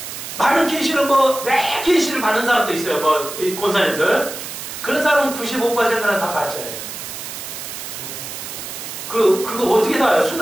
많은 계시를 매 계시를 받는 사람도 있어요. 이 권사님들. 그런 사람은 95%는 다 가짜예요. 그거 어떻게 다 알아요?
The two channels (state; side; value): noise; right; hiss, 9 dB below the sound